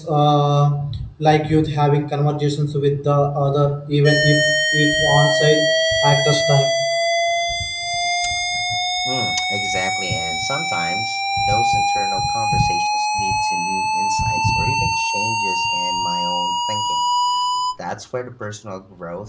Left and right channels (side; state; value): both; identical; correlation 1.00